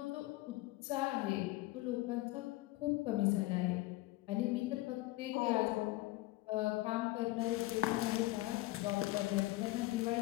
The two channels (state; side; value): quieter; right; 19.1 dB